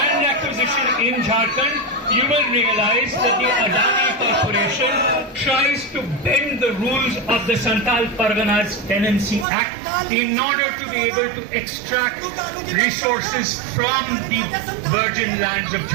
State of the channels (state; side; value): drops out; left; at 9.5 s